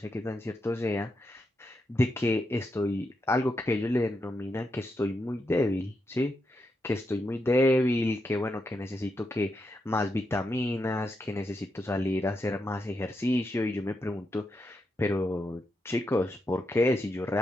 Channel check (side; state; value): both; normal; correlation 0.84